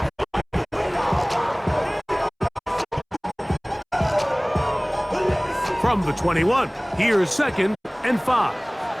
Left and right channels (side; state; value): both; identical; correlation 1.00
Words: From the 21, here's 2nd and 5.